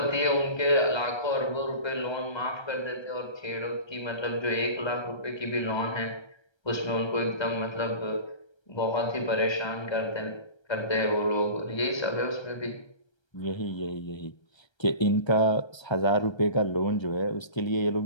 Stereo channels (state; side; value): late; right; 1.3 ms